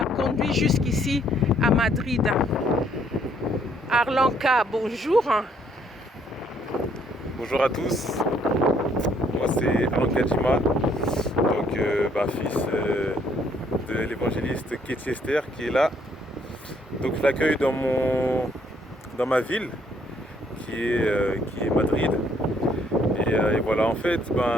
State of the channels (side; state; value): both; normal; correlation 0.67